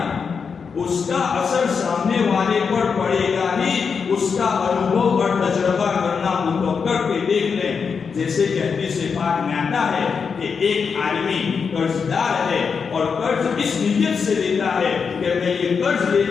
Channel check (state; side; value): quieter; right; 5.8 dB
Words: اس کا اثر سامنے والے پر پڑے گا ہی، اس کا انوبھو اور تجربہ کرنا ہو تو کر کے دیکھ لیں۔ جیسے کہ حدیث پاک میں آتا ہے کہ ایک آدمی قرض دار ہے اور قرض اس نیت سے لیتا ہے کہ میں یہ قرض